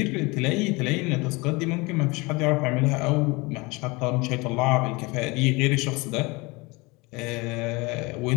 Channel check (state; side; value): quieter; right; 25.3 dB